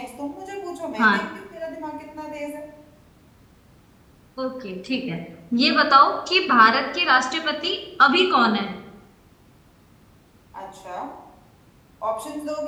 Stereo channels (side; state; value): both; identical; correlation 1.00